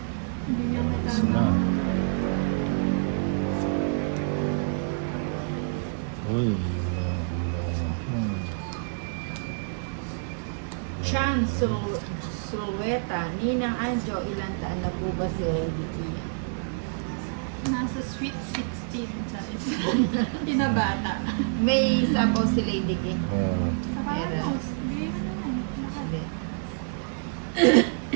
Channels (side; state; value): left; silent; digital silence